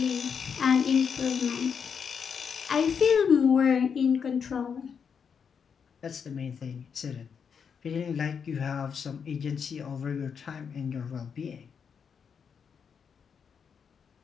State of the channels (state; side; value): quieter; right; 6.7 dB